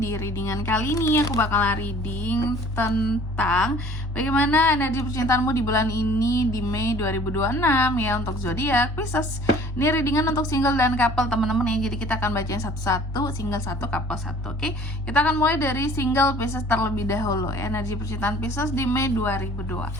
readingan kali ini aku bakalan reading tentang bagaimana energi percintaanmu di bulan ini di Mei 2026 ya untuk zodiak Pisces. Ini readingan untuk single dan couple teman-teman ya. Jadi kita akan bacain satu-satu, single satu, couple satu. Oke. Kita akan mulai dari single Pisces terlebih dahulu. Energi percintaan Pisces di Mei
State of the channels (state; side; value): normal; both; correlation 0.51